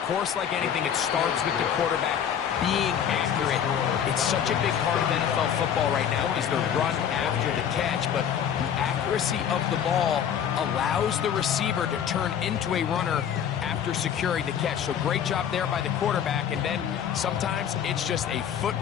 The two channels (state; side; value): quieter; right; 8.7 dB